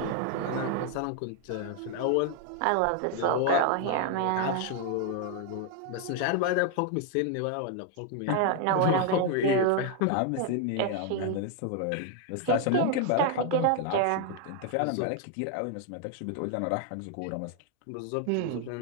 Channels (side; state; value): both; different; correlation 0.00